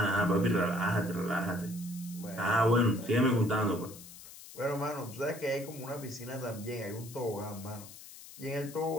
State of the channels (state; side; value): noise; left; hiss, 16 dB below the sound